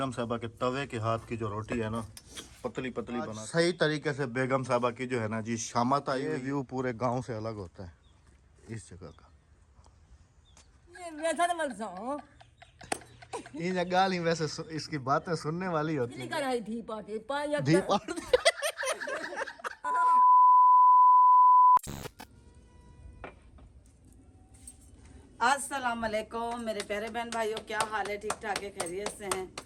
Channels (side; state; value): both; identical; correlation 1.00